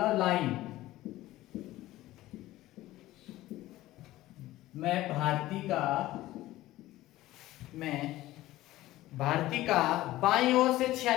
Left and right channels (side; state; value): right; quieter; 16.2 dB